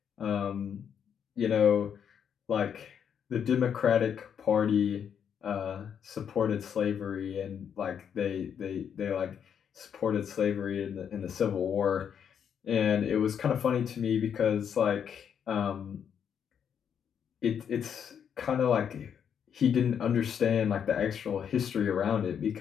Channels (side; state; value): right; quieter; 8.0 dB